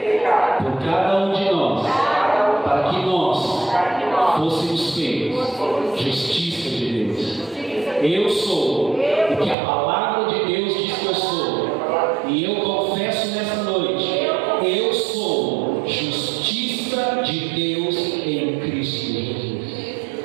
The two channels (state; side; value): drops out; left; at 9.6 s